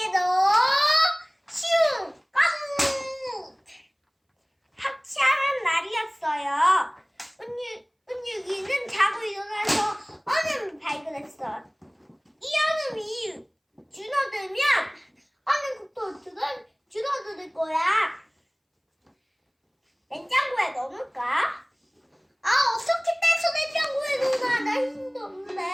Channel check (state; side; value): identical; both; correlation 1.00